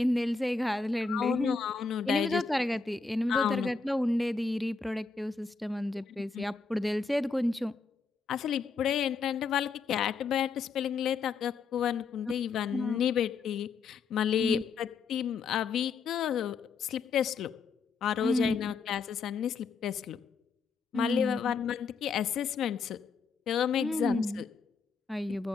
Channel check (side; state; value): right; quieter; 4.9 dB